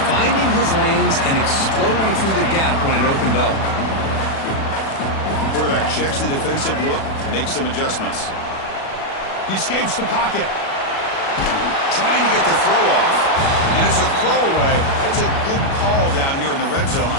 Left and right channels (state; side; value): late; right; 36 ms